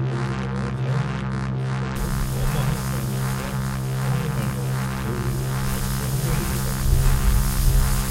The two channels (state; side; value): identical; both; correlation 1.00